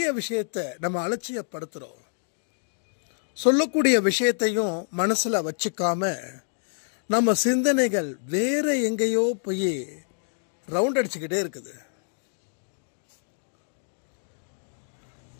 விஷயத்தை நம்ம அலட்சியப்படுத்துறோம். சொல்லக்கூடிய விஷயத்தையும் மனசுல வச்சுக்காம நம்ம சிந்தனைகள் வேற எங்கேயோ போய் ரவுண்ட் அடிச்சுக்கிட்டே இருக்குது.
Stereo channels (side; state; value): right; silent; digital silence